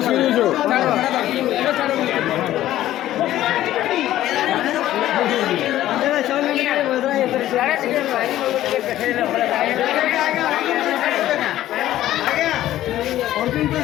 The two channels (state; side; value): quieter; right; 13.7 dB